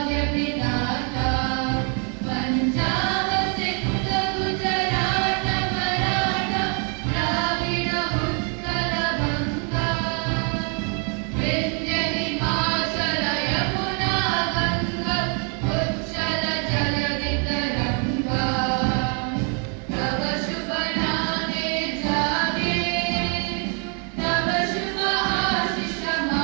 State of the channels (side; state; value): left; quieter; 39.5 dB